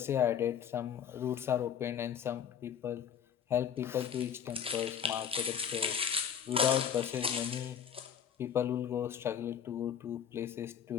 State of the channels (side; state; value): right; quieter; 8.3 dB